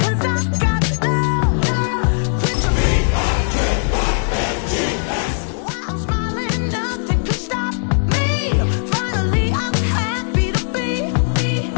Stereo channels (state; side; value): silent; right; digital silence